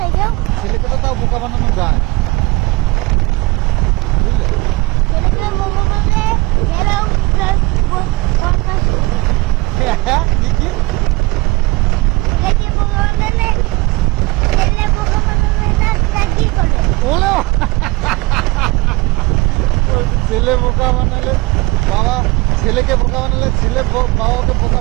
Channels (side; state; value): left; quieter; 22.8 dB